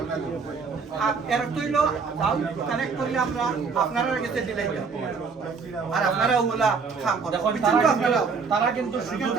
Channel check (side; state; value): left; quieter; 5.1 dB